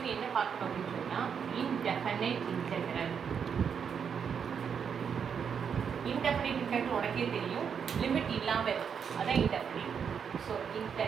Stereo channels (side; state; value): left; quieter; 7.1 dB